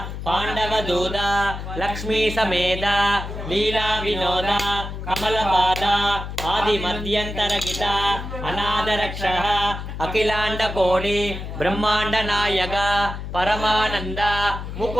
பாண்டவதூதா லக்ஷ்மி சமேத லீலா வினோதா கமலபாதா ஆதி மத்தியந்தரகிதா அநாதரக்ஷ அகிலாண்ட கோடி பிரம்மாண்ட நாயக பரமானந்த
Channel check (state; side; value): noise; left; hum, 7 dB below the sound